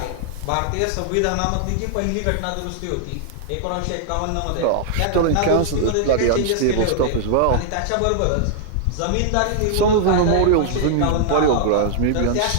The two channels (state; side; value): different; both; correlation -0.01